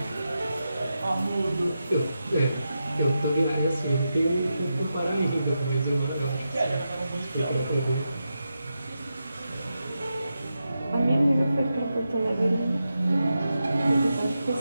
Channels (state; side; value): inverted; both; correlation -0.88